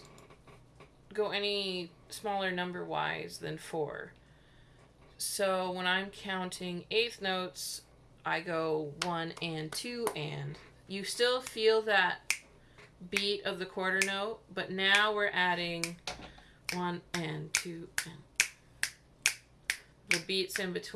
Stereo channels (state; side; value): identical; both; correlation 1.00